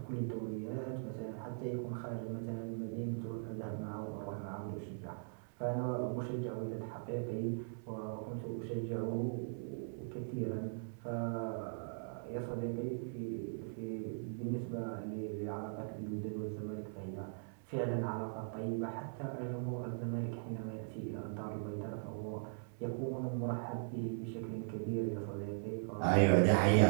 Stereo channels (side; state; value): left; silent; 51 dB below the other